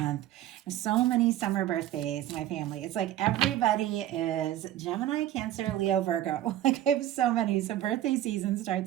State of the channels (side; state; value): left; quieter; 12.8 dB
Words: There's so many summer birthdays in my family. It's like everybody is Gemini, Cancer, Leo, Virgo. Like I have so many. So birthday season